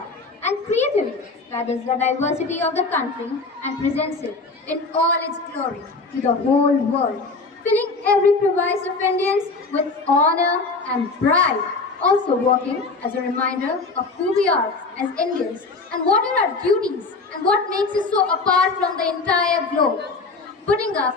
and creatively gathers the diversity of the country and presents it in all its glory to the whole world, filling every crevice of Indians with honor and pride, also working as a reminder of who we are as Indians and what are our duties and what makes us so apart from the entire globe, putting up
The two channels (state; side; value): quieter; right; 3.9 dB